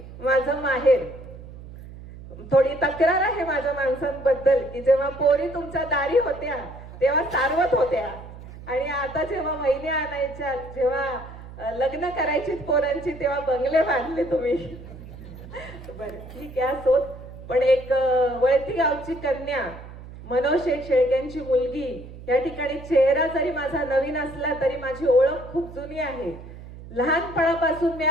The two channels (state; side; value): noise; right; hum, 15 dB below the sound